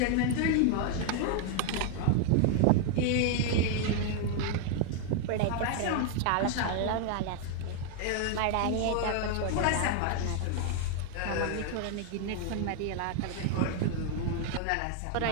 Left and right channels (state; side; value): different; both; correlation 0.00